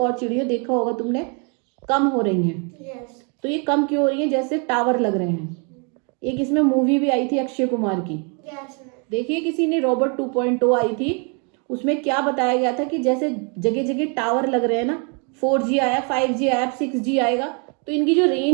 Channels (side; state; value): left; quieter; 36.5 dB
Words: चिड़िया, देखा होगा तुमने, कम हो रही हैं। तो ये कम क्यों हो रही है, जैसे टावर लग रहे हैं। एक इसमें मूवी भी आई थी अक्षय कुमार की, देखिए किसी ने, रोबोट 2.0 आई थी, उसमें क्या बताया गया था कि जैसे जगह जगह टावर लग रहे हैं ना, 4G आया, 5G आया, 6G आएगा, तो इनकी जो